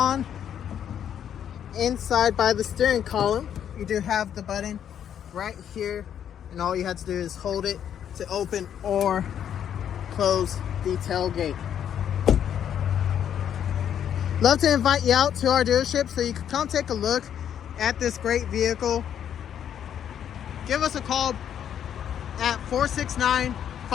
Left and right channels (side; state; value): right; quieter; 9.3 dB